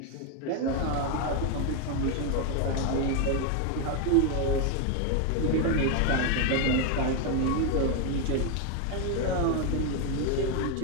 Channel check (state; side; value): different; both; correlation 0.01